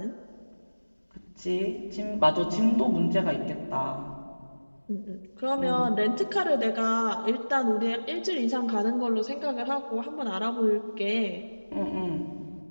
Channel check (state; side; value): inverted; both; correlation -1.00